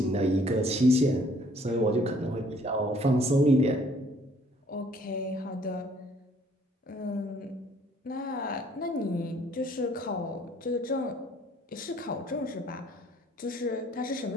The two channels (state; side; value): normal; both; correlation 0.60